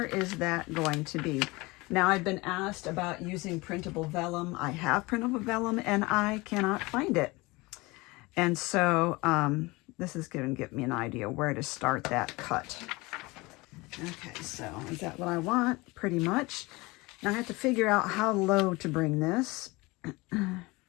is that going to be? Now I've been asked about using printable vellum. I have printable vellum and I cannot find it. And so this is going to give me an idea where to start that cut. Okay, so is that what I want? Pretty much. Now I have to figure out how low to bring this.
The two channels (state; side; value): quieter; right; 23.3 dB